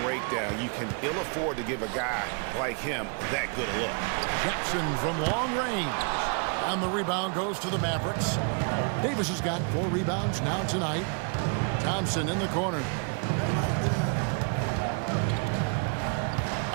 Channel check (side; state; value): left; quieter; 38.5 dB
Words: breakdown. You can ill afford to give a guy like him that good a look. Jackson from long range. And the rebound goes to the Mavericks. Davis has got 4 rebounds now tonight. Thompson in the corner.